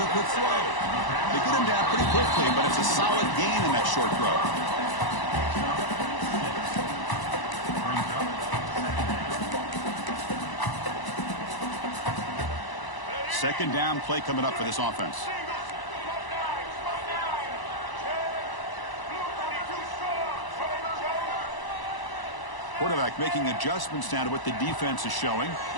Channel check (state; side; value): late; right; 1.0 ms